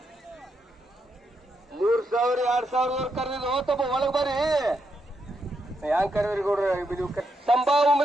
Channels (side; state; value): both; normal; correlation 0.81